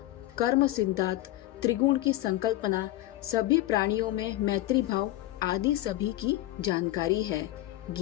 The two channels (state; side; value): quieter; right; 15.6 dB